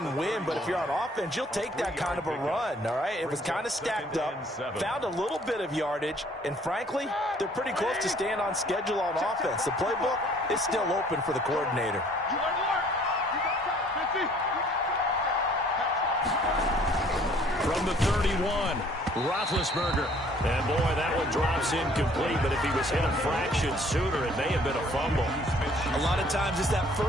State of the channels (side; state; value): both; normal; correlation 0.58